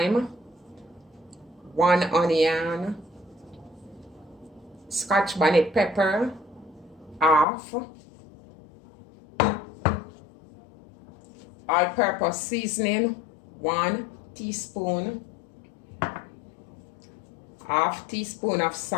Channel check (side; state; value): right; drops out; at 7.5 s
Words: 1 onion, Scotch bonnet pepper, half, all-purpose seasoning, 1 teaspoon, half teaspoon of